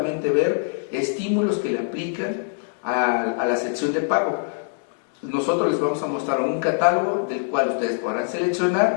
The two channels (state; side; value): silent; right; 63 dB below the other